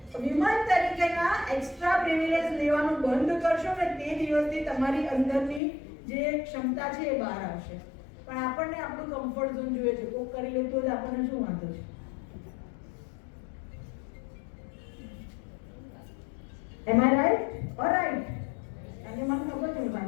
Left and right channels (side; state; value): right; drops out; at 5.6 s